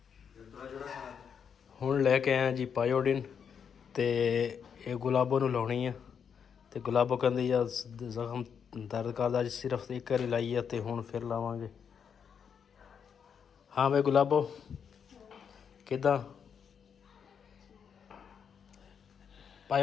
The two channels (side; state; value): right; quieter; 7.2 dB